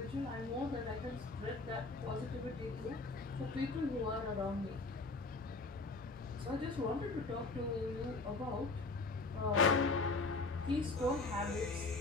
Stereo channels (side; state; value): right; quieter; 3.6 dB